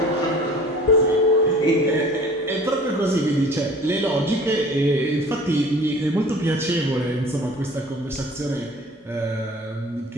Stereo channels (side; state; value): both; normal; correlation 0.46